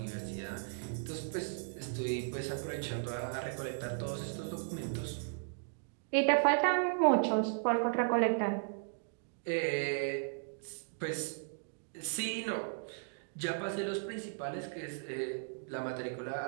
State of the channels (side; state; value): left; silent; digital silence